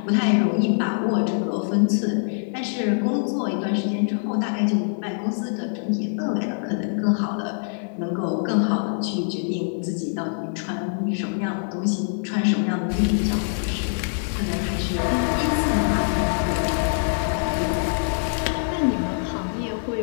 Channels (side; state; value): right; silent; 63 dB below the other